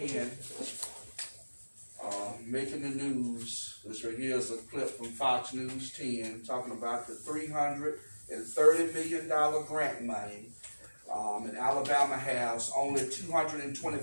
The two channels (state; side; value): inverted; both; correlation -1.00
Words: making the news. This right here is a clip from Fox News 10 talking about the $330 million grant money. And Alabama has only